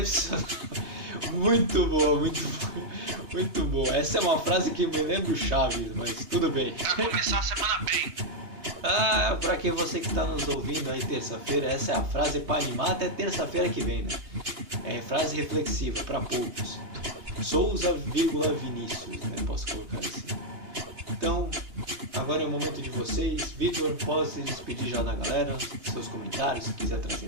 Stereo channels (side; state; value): left; late; 2.9 ms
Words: Muito boa, muito boa. Essa é uma frase que me lembra o Chaves, mas tudo bem. Vai começar a semana bem. Pra quem você que está nos ouvindo aí terça-feira, essa é a frase para animar até terça-feira que vem, né? É frase reflexiva para poucos. Souza, Vinícius, né? Posso colocar assim. Então, agora é o momento de vocês. Vitor, pode se despedir já da galera, seus comentários, se quiser